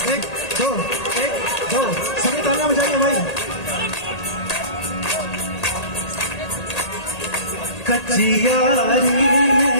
एक दो सभी तालियां बजाइए भाई। कच्ची यारी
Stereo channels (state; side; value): late; right; 1.8 ms